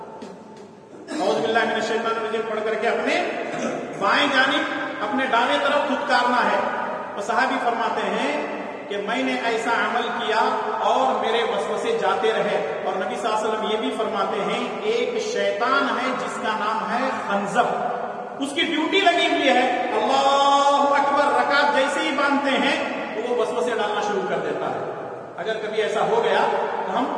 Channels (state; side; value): identical; both; correlation 1.00